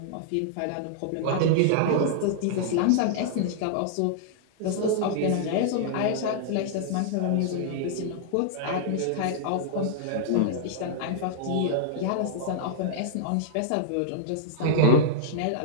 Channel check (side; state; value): both; different; correlation -0.01